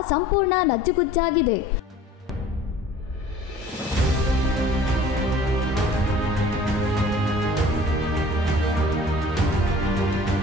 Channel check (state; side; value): normal; both; correlation 0.48